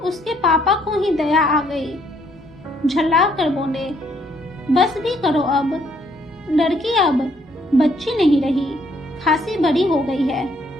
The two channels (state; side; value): normal; both; correlation 0.68